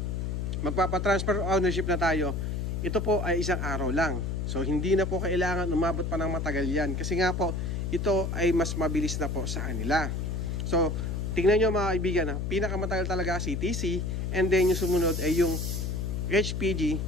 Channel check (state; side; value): noise; left; hum, 2 dB below the sound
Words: magpapatransfer ownership na tayo, ito po ay isang araw lang. So hindi na po kailangan umabot pa ng matagal yan. Kasi nga po, ito ay mas mabilis na po sa kanila. So tingnan nyo mga kaibigan, pinakamatagal talaga CTC, and then yung sumunod ay yung HPG